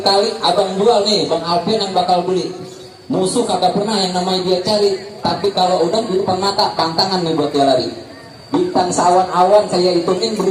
kali, abang jual nih, Bang Alfian yang bakal beli. Musuh kagak pernah yang namanya dia cari, tapi kalau udah di depan mata, pantangan nih buat dia lari. Bintang sawan-awan saya hitungin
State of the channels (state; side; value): identical; both; correlation 1.00